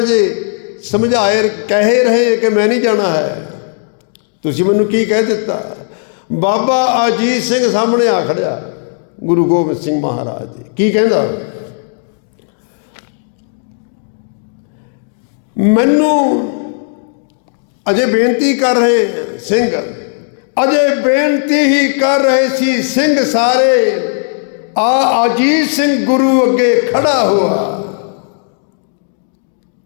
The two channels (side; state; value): right; silent; 61 dB below the other